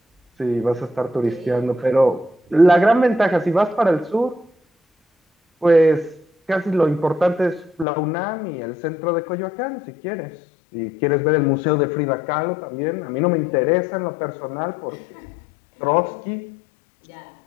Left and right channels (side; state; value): right; drops out; at 7.9 s